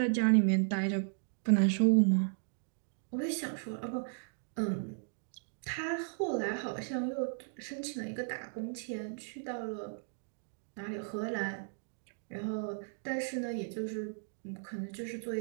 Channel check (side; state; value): left; silent; digital silence